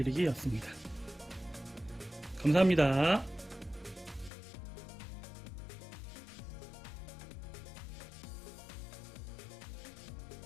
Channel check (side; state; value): right; drops out; at 4.3 s